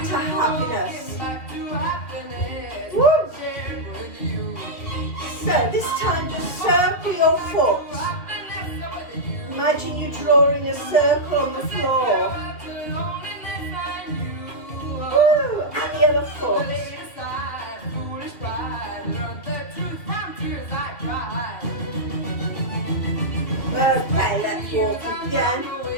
to happiness. Woo! So this time just circle your foot. Imagine you're drawing a circle on the floor. Woo! And the other foot. Okay, let's walk again.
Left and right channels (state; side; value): late; right; 2.7 ms